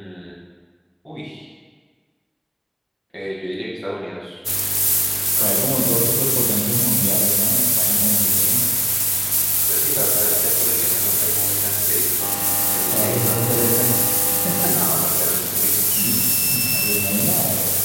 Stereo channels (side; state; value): both; identical; correlation 1.00